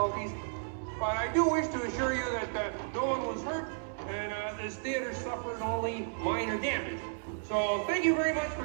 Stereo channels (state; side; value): silent; left; 56 dB below the other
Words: but I do wish to assure you that no one was hurt and this theater suffered only minor damage. So thank you very much